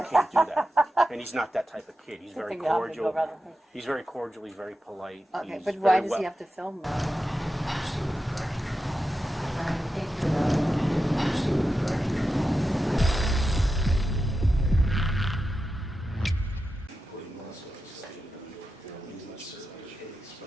can't do that. And he's not that type of kid. He's very cordial. He's very cordial. He's very polite. Okay, He's but why very does he have to film that?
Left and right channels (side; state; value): both; normal; correlation 0.90